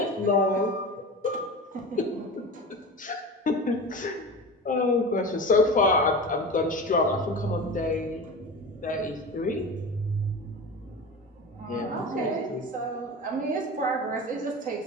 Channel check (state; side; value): normal; both; correlation 0.30